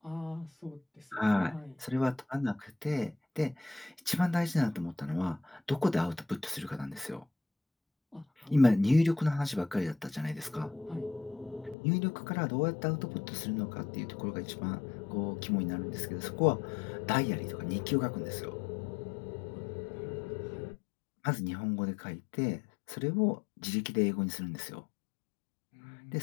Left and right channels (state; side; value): drops out; right; at 11.8 s